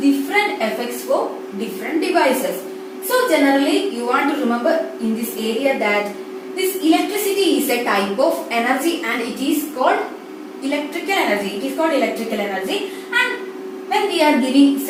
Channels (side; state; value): both; identical; correlation 1.00